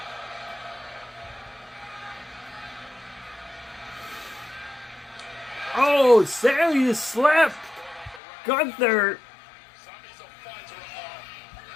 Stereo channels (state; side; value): drops out; right; at 8.2 s